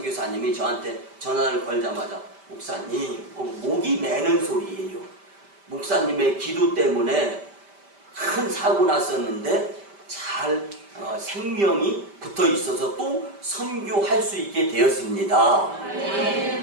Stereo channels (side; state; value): left; late; 5.1 ms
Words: 저한테 전화를 걸자마자 목사님 목이 매는 소리예요. 목사님의 기도 때문에 큰 사고 났었는데 잘 생명이 붙어 있어서 또 선교할 수 있게 되었습니다.